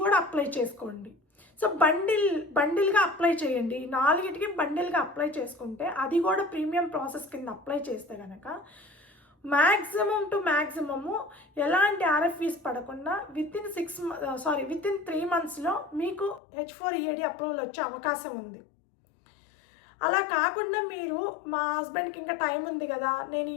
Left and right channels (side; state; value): right; drops out; at 16.4 s